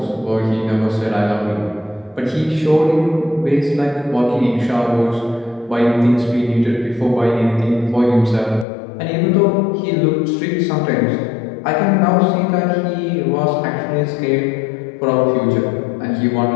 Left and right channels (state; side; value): drops out; right; at 8.7 s